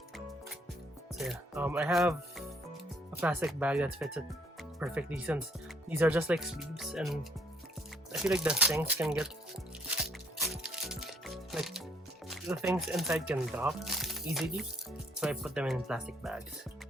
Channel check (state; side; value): normal; both; correlation 0.65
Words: So yeah, I have a plastic bag that fits it perfectly, since these are just like sleeves, and I feel like the things can get, like, the things inside can drop easily, so I put them in plastic bags.